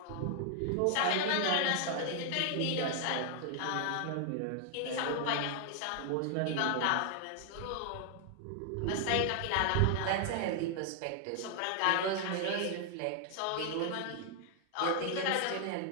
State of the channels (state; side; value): different; both; correlation 0.00